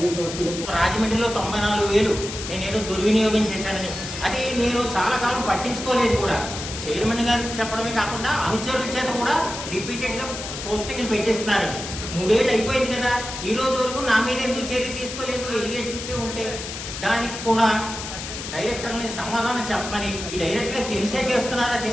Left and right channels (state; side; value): noise; left; hiss, 8 dB below the sound